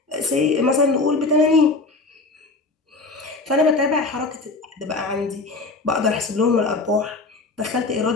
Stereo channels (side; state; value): right; quieter; 3.5 dB